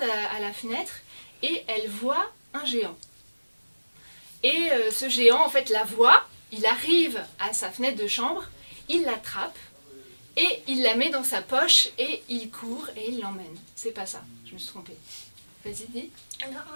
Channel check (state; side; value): inverted; both; correlation -1.00